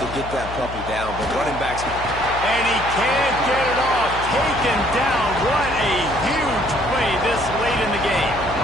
get that puppy down. But running backs... And he can't get it off. Taken down. What a huge play this late in the game.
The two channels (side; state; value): left; noise; hum, 11 dB below the sound